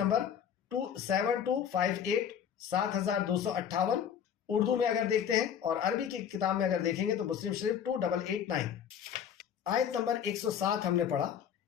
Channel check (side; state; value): right; quieter; 8.4 dB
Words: 7258 7258، اردو میں اگر دیکھتے ہیں اور عربی کی کتاب میں اگر دیکھیں گے تو مسلم شریف 2889۔ آیت نمبر 107 ہم نے پڑھا۔